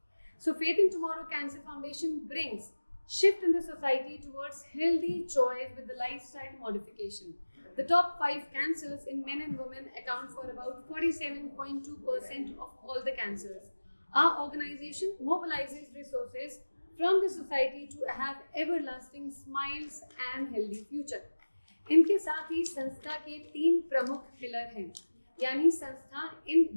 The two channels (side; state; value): both; inverted; correlation -1.00